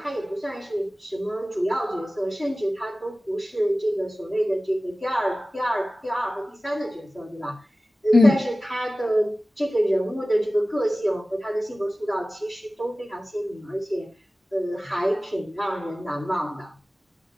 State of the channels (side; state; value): both; normal; correlation 0.97